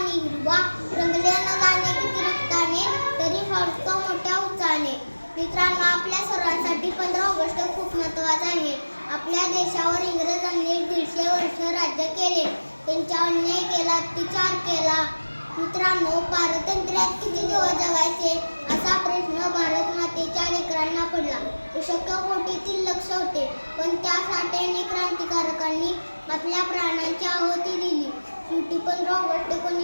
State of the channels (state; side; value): inverted; both; correlation -1.00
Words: हिरवा, रंगले न जाणे किती रक्ताने, तरी फळतो मोठ्या उत्साहाने. मित्रांनो, आपल्या सर्वांसाठी 15 ऑगस्ट खूप महत्त्वाचा आहे. आपल्या देशावर इंग्रजांनी 150 वर्ष राज्य केले. त्यांचा अन्याय केला, अत्याचार केला. मित्रांनो, पारतंत्र्यात किती दिवस जगायचे असा प्रश्न भारत मातेच्या लेकरांना पडला. शक्य कोटीतील लक्ष होते, पण त्यासाठी अनेक क्रांतिकारकांनी आपल्या प्राणांची आहुती दिली. शेवटी 15 ऑगस्ट